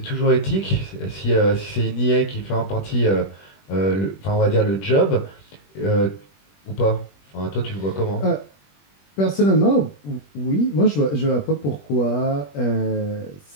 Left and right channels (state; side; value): late; right; 21 ms